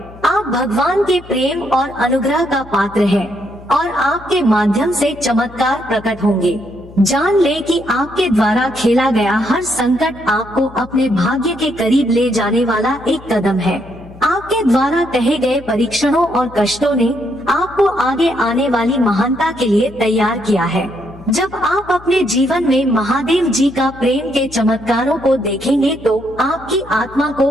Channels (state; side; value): noise; left; hum, 20 dB below the sound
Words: आप भगवान के प्रेम और अनुग्रह का पात्र हैं और आपके माध्यम से चमत्कार प्रकट होंगे। जान ले कि आपके द्वारा खेला गया हर संकट आपको अपने भाग्य के करीब ले जाने वाला एक कदम है। आपके द्वारा कहे गए परीक्षणों और कष्टों ने आपको आगे आने वाली महानता के लिए तैयार किया है। जब आप अपने जीवन में महादेव जी का प्रेम के चमत्कारों को देखेंगे तो आपकी आत्मा